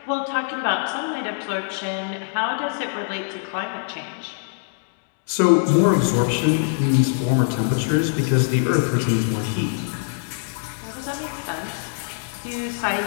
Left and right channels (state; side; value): silent; right; digital silence